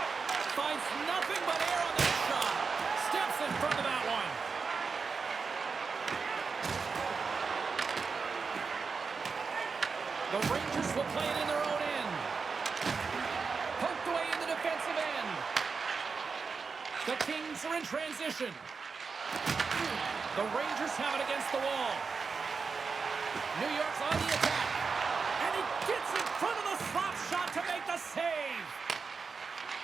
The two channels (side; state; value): left; quieter; 5.0 dB